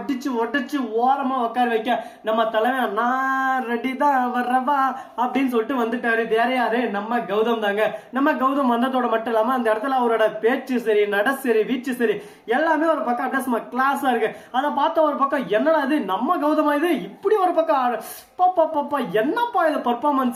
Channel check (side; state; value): both; identical; correlation 1.00